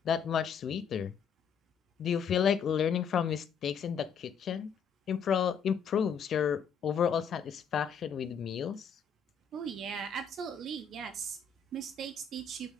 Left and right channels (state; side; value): quieter; right; 6.4 dB